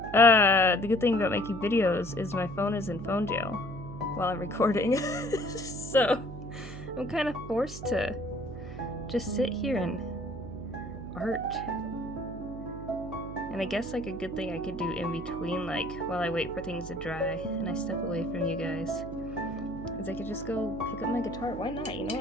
the good thing about making videos is my phone is in phone jail while I'm recording. So I'm kind of forced to just sit here and art. And I guess like a good thing I could do in between, like while I wait for things to dry and I step away from you guys, is I could just go pick up my guitar. Why not? You know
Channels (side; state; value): right; noise; hum, 12 dB below the sound